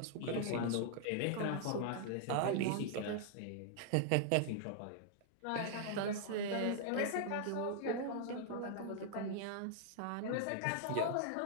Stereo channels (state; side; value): different; both; correlation -0.01